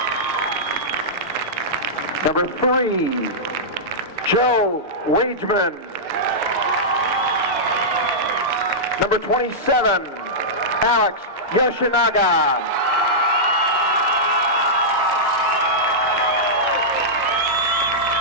Number 3, Joe Wageman. Number 27, Alex Yoshinaga.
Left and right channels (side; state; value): both; normal; correlation -0.12